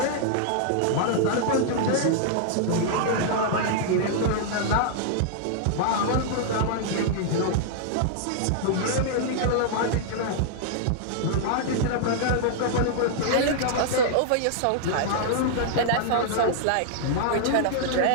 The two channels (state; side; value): different; both; correlation -0.01